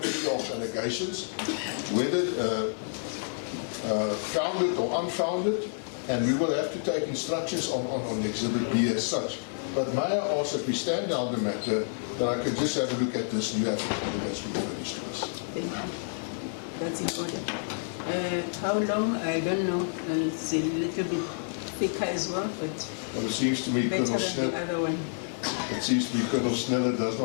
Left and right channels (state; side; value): silent; right; 59 dB below the other